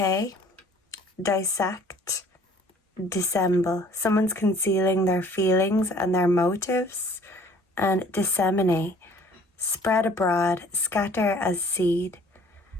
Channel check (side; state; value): both; normal; correlation 0.54